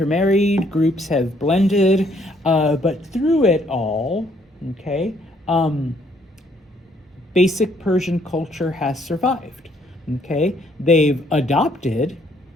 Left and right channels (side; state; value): both; normal; correlation 0.67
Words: groups have blended, but through it all, okay, basic Persian culture has survived. Okay, they've adopted,